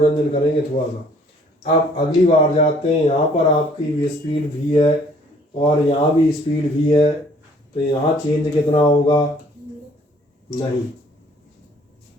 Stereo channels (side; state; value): both; normal; correlation 0.59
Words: करेंगे थोड़ा सा। अब अगली बार जाते हैं, यहाँ पर आपकी स्पीड v है और यहाँ भी स्पीड v है, तो यहाँ चेंज कितना होगा, नहीं,